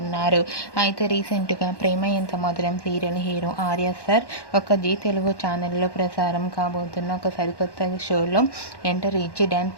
ఉన్నారు. అయితే రీసెంట్గా ప్రేమ ఎంత మధురం సీరియల్ హీరో ఆర్య సార్ ఒక జీ తెలుగు ఛానల్లో ప్రసారం కాబోతున్న ఒక సరికొత్త షోలో ఎంటర్ ఇచ్చి డ్యాన్స్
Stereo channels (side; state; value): right; late; 1.1 ms